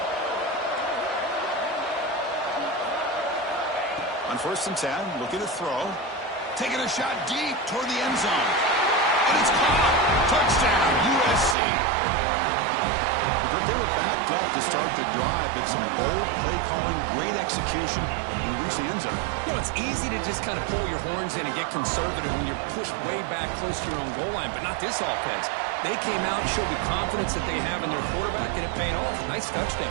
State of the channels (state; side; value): drops out; left; at 11.6 s